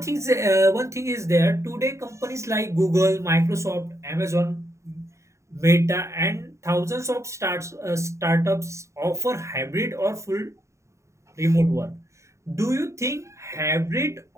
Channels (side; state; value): left; late; 0.14 ms